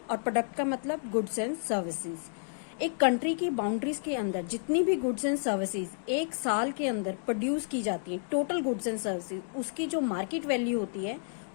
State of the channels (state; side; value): silent; right; digital silence